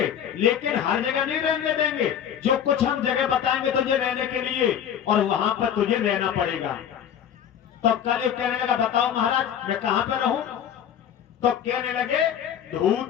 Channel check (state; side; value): quieter; right; 9.1 dB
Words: लेकिन हर जगह नहीं रहने देंगे। जो कुछ हम जगह बताएंगे तुझे रहने के लिए, और वहां पर तुझे रहना पड़ेगा। तो कलयुग कहने लगा, बताओ महाराज मैं कहां पर रहूं? तो कहने लगे,